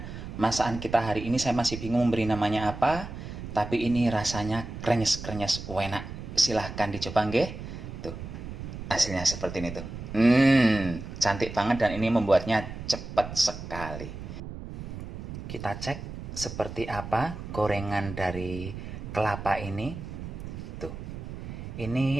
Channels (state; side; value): noise; right; rumble, 9 dB below the sound